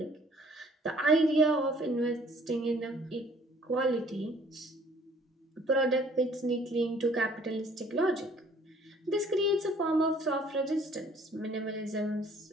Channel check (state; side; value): normal; both; correlation 0.57